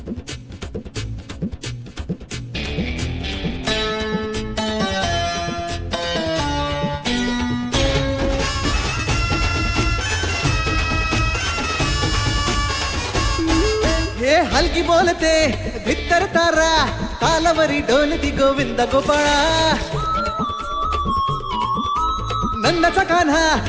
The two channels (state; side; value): identical; both; correlation 1.00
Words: हे हलकी बोलते भित्तर तारा तालावरी डोलती गोविंद गोपाळा. नंदाचा कान्हा